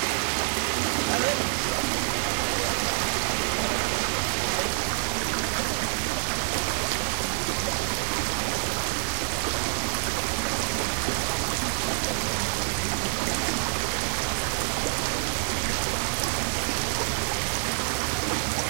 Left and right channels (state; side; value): silent; left; 60 dB below the other